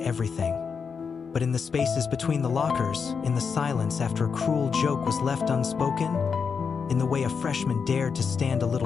But in the spaces between the lockers, in the silence after a cruel joke was left unspoken, in the way a freshman dared to stand a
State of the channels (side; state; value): right; quieter; 5.9 dB